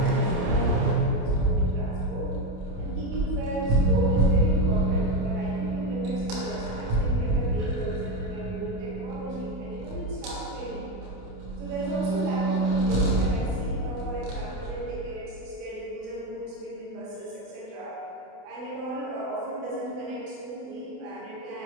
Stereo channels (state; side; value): late; left; 28 ms